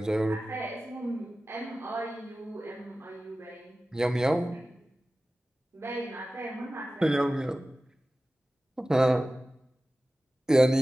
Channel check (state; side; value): normal; both; correlation 0.96